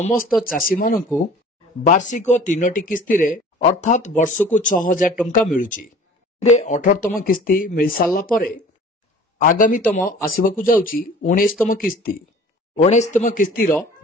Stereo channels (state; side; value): normal; both; correlation 0.46